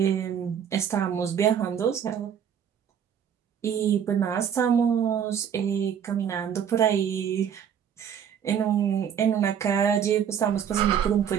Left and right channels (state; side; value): quieter; left; 8.4 dB